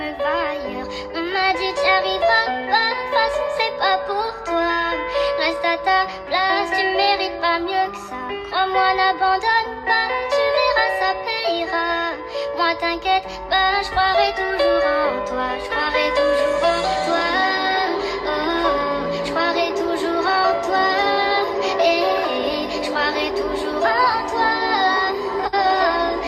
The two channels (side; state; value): both; identical; correlation 1.00